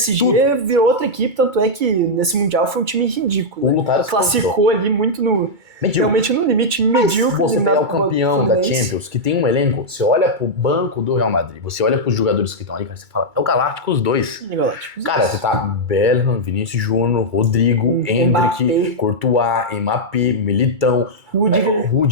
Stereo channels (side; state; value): left; late; 2.3 ms